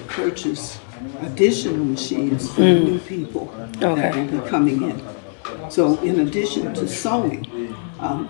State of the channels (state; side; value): silent; right; 60 dB below the other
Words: purchase additional machines for the new people that will be coming in. So in addition to sewing,